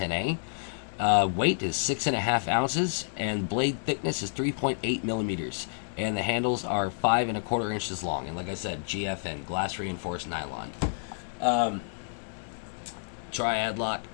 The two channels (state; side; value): silent; right; digital silence